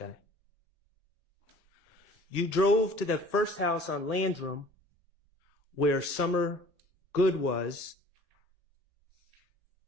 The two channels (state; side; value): normal; both; correlation 0.50